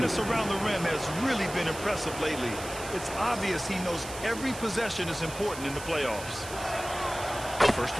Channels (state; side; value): noise; right; hiss, 12 dB below the sound